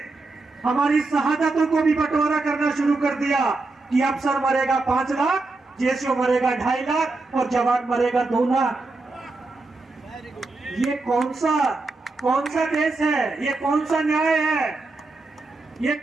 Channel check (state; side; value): quieter; left; 3.4 dB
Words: हमारी शहादतों को भी बंटवारा करना शुरू कर दिया कि अफसर मरेगा 5 लाख, जेसीओ मरेगा 2.5 लाख और जवान मरेगा 2 लाख। ये कौन सा देश है? ये कौन सा न्याय है? ये